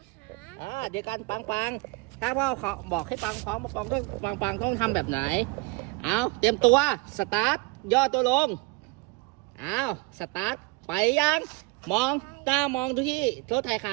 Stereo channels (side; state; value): left; quieter; 26.3 dB